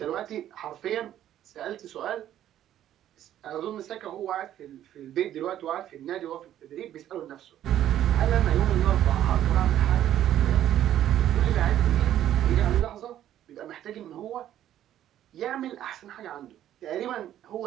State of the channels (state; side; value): quieter; left; 11.7 dB